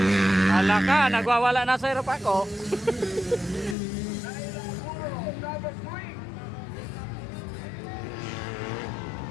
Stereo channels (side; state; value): right; drops out; at 3.8 s